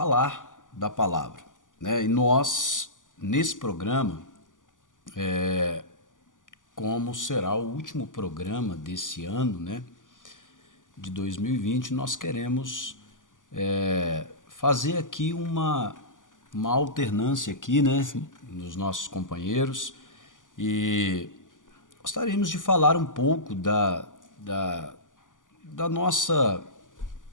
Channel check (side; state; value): right; late; 0.88 ms